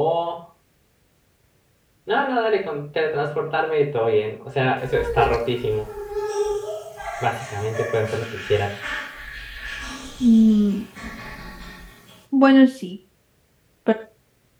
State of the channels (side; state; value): both; identical; correlation 1.00